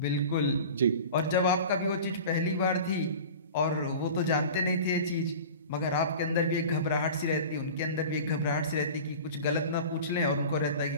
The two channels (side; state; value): both; inverted; correlation -0.36